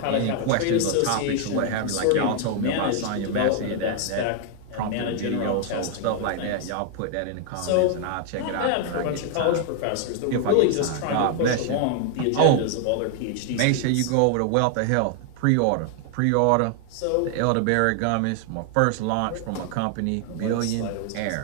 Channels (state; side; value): different; both; correlation 0.00